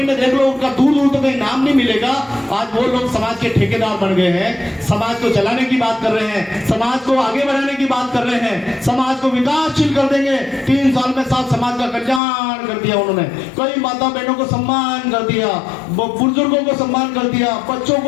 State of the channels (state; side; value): drops out; right; at 12.2 s